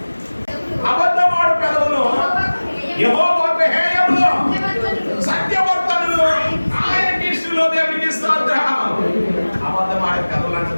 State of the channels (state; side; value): inverted; both; correlation -1.00